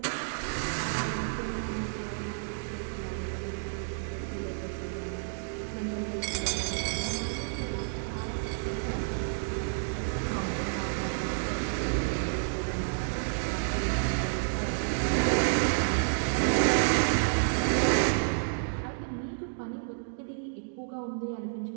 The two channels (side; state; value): left; silent; digital silence